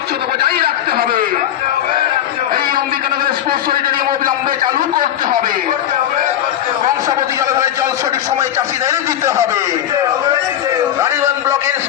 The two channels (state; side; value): quieter; right; 11.1 dB